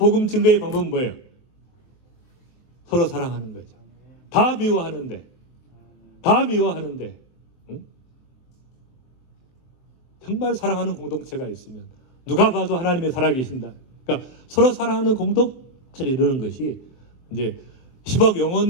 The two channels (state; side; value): late; right; 23 ms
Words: 증거의 방법은 뭐예요? 서로 사랑하는 거죠. 다 미워하는데 응? 정말 사랑하는 공동체가 있으면 누가 봐도 하나님의 살아계신다. 그러니까 서로 사랑하는 공동체를 이루는 것이 이제 10억